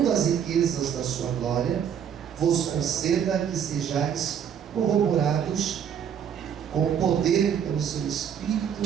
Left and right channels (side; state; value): left; quieter; 8.3 dB